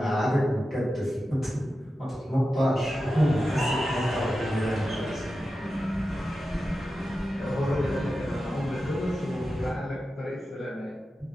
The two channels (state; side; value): normal; both; correlation 0.92